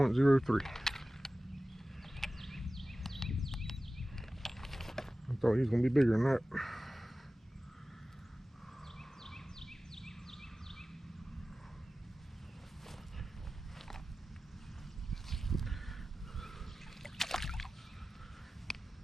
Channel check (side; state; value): both; normal; correlation 0.96